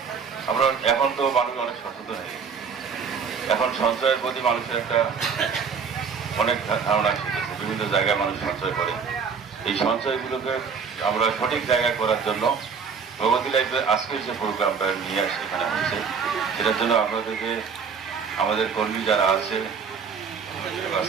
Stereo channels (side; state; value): left; quieter; 6.0 dB